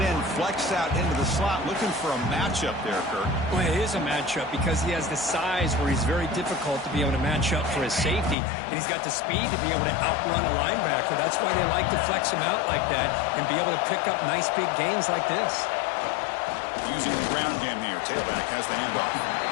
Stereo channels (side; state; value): right; drops out; at 8.3 s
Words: end flexed out into the slot, looking for a matchup there, Kirk. Well, it is a matchup because he has the size where he's very difficult to be able to match up for his safety, and he's got the speed to be able to outrun a linebacker. That's why they like to flex him out like that and be able to pick up nice big gains like this. Using the ground game here, tailback has the handoff.